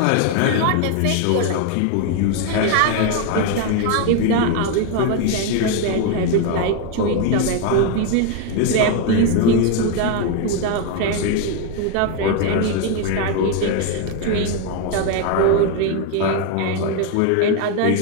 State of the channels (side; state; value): both; different; correlation 0.01